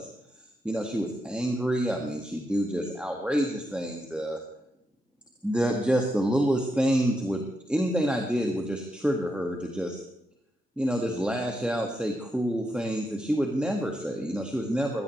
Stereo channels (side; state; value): both; normal; correlation 0.83